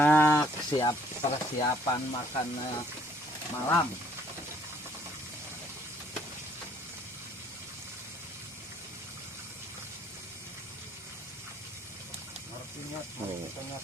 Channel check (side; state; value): both; normal; correlation 0.62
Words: siap persiapan makan malam. Oh.